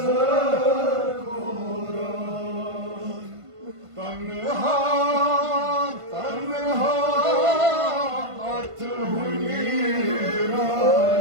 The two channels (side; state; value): left; late; 1.5 ms